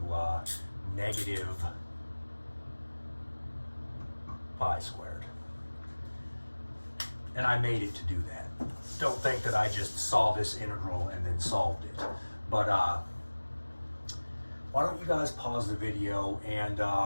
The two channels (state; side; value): inverted; both; correlation -1.00